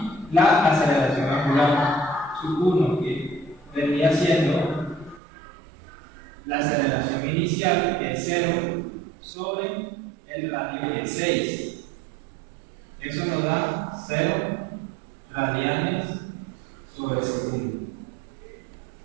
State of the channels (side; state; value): left; drops out; at 5.2 s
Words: la aceleración angular, su 1 que vendría siendo la aceleración inicial, que es 0 sobre el radio de 6. Eso nos da 0 radianes sobre segundo.